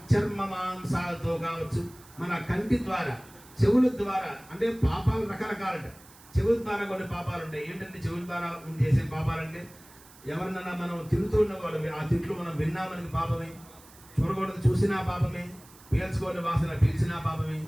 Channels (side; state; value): right; noise; hiss, 23 dB below the sound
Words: మాంసాలతో కావచ్చు, మన కంటి ద్వారా, చెవుల ద్వారా, అంటే పాపాలు రకరకాలంట. చెవుల ద్వారా కొన్ని పాపాలు ఉంటాయి. ఏంటంటే చెవుల ద్వారా చేసే పాపాలంటే ఎవరినన్నా మనం తిరుగుతూ ఉన్నవాడు ఆ తిట్లు మనం విన్నా మనకి పాపమే, చూడకూడదు చూసినా పాపమే, పీల్చుకోని వాసన పీల్చినా పాపమే,